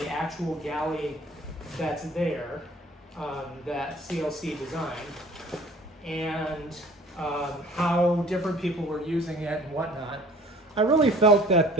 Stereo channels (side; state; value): both; normal; correlation 0.50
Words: actual galley that's there, that CLC designed, and how different people were using it and whatnot, I really felt that